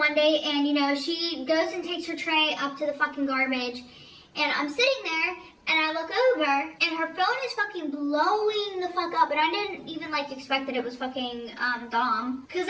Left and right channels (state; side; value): identical; both; correlation 1.00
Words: day, and you know, she goes and takes her tray up to the fucking garbage, and I'm sitting there, and I look over, and her phone is fucking blowing the fuck up, and I didn't even like expect that it was fucking Dom, because